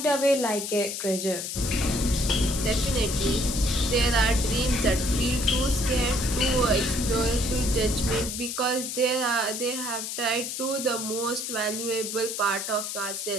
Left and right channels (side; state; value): left; noise; hiss, 5 dB below the sound